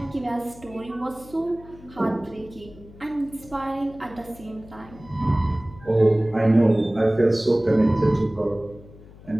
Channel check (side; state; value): left; noise; hum, 20 dB below the sound